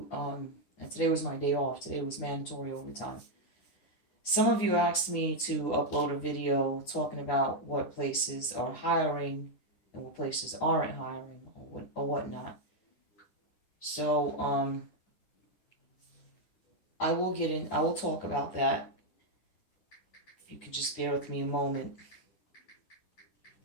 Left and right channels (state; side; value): late; right; 9.8 ms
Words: And today was my day off. Today was mandatory overtime. Some of you asked me to upload a video talking about what places are hiring and what places aren't hiring or whatnot. So I will get in. I will talk about that. If you could just bear with me a moment.